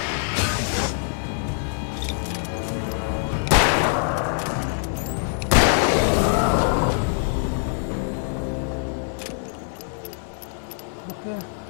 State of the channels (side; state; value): right; silent; digital silence